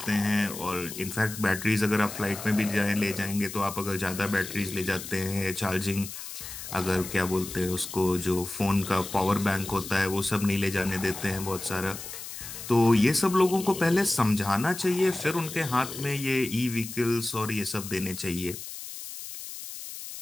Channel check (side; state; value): left; noise; hiss, 10 dB below the sound